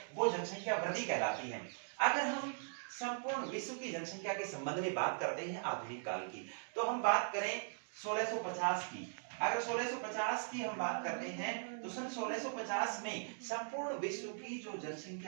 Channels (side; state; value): left; silent; digital silence